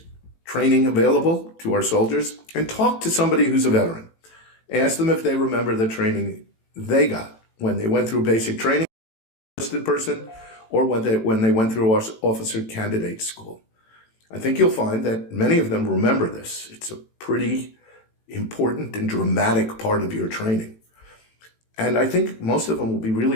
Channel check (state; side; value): late; right; 18 ms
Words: training available to our soldiers. And talk to somebody who's a veteran. Ask them if they remember the training they got when they went through basic training, enlisted person, or when they went through officer candidate school. I think you'll find that many of them remember this. It's a pretty important and dramatic part of your training. And I think most of them will be